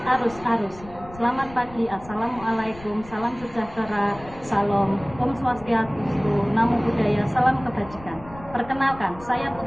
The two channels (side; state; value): left; noise; rumble, 18 dB below the sound